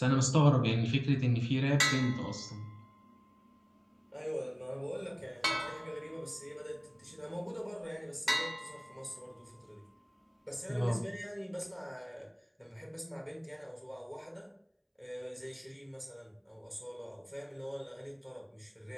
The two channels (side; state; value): both; identical; correlation 1.00